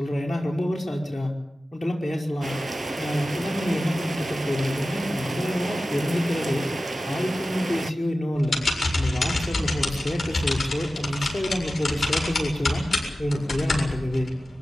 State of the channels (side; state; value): both; normal; correlation 0.95